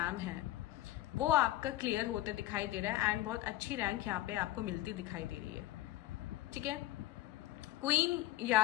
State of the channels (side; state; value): right; quieter; 15.9 dB